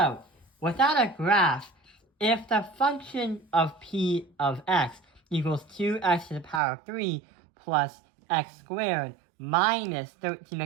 without a graph, if the function of p of x equals 2x to the power of 3 plus x squared minus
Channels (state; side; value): drops out; left; at 6.6 s